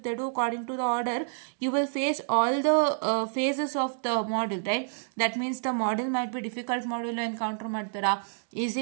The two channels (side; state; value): left; silent; digital silence